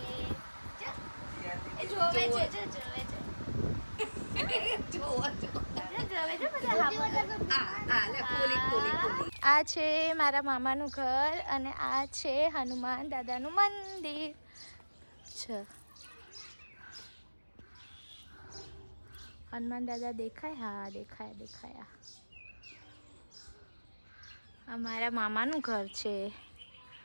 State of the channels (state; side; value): inverted; both; correlation -1.00